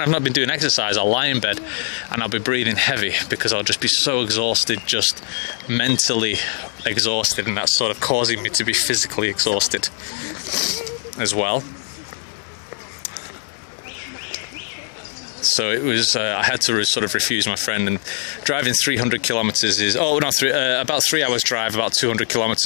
I've not been doing exercise, I'll lie in bed and I'll be breathing heavy because I'll just be so exhausted, just mentally exhausted, and that's sort of causing me to be physically exhausted as well. So it was, I had to sort of refuse my friend, and driving 300 kilometers is, about 3 hours drive, about 200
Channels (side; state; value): right; silent; digital silence